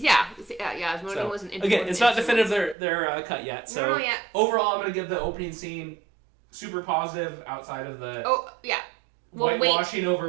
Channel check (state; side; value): drops out; left; at 2.8 s